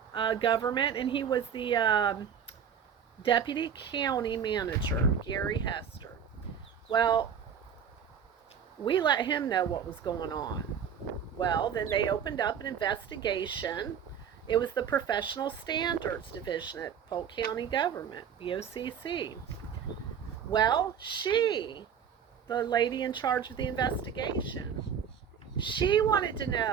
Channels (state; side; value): quieter; left; 7.7 dB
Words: government, and he was the deputy county manager, Gary Hester. Well, we let him know what was going on. Well, then they opened up an investigation. It was the Professional Standards Division at Polk County Government, BOCC. Well, the lady in charge of the investigation, she wanted to